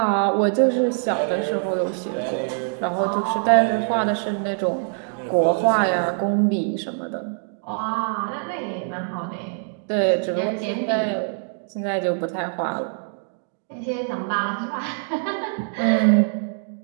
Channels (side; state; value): left; silent; 63 dB below the other